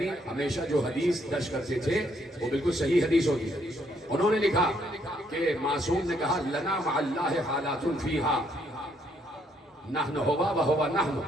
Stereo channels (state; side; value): normal; both; correlation 0.70